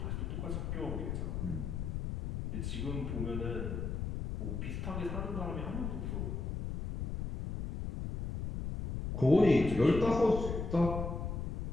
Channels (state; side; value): noise; left; rumble, 3 dB below the sound